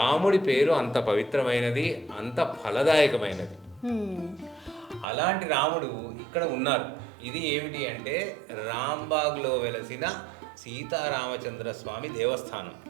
పేరు అంత పవిత్రమైనది, అంత ఫలదాయకమైనది. అలాంటి రాముడు ఇక్కడ ఉన్నారు. ఇది ఏమిటి అంటే రాంబాగ్లో వెలసిన సీతారామచంద్ర స్వామి దేవస్థానం.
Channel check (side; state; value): left; drops out; at 5.1 s